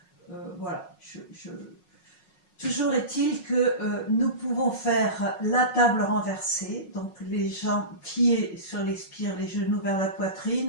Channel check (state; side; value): late; right; 5.5 ms